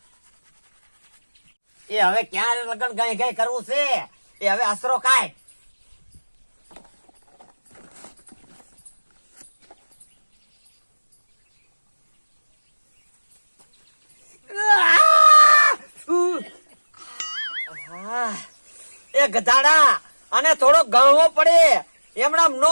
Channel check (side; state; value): both; inverted; correlation -1.00